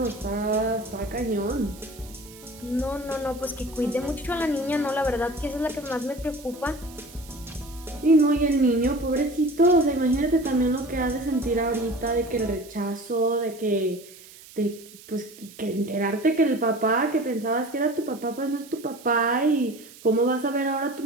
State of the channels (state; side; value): noise; right; hiss, 20 dB below the sound